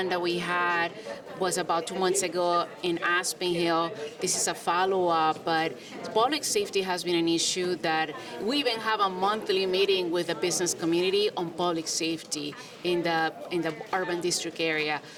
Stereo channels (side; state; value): both; identical; correlation 1.00